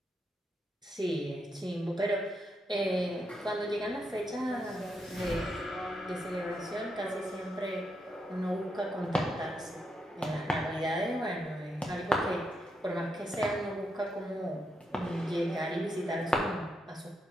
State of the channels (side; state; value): both; normal; correlation 0.81